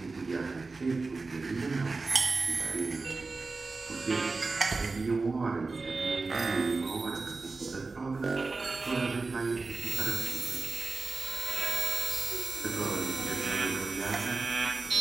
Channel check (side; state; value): left; quieter; 3.9 dB